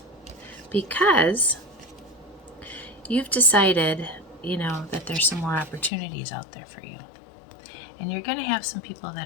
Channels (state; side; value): drops out; right; at 5.9 s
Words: because you've decided, that there's some more opportunities out there for you. And you're going to have some people that